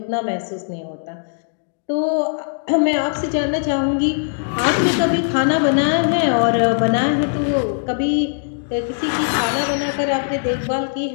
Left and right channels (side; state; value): right; silent; digital silence